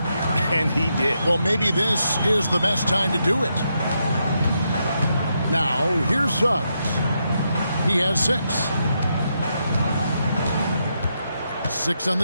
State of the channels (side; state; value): both; inverted; correlation -0.82